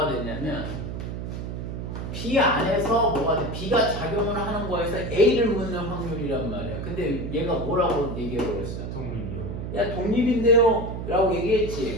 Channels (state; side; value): noise; right; hum, 6 dB below the sound